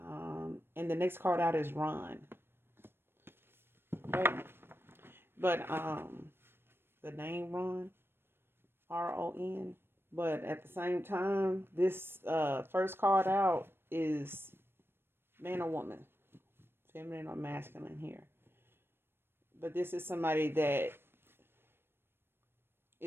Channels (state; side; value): late; left; 0.11 ms